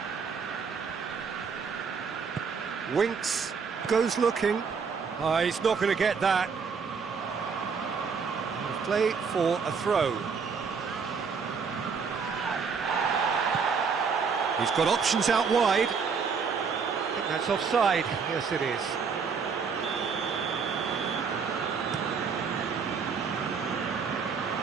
Winks, goes looking. He's not going to get that. Play for a throw. He's got options out wide. I think that's offside. Yes, it is.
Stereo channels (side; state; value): left; quieter; 5.7 dB